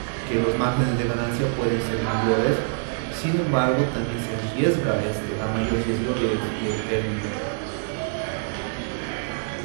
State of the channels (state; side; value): silent; left; digital silence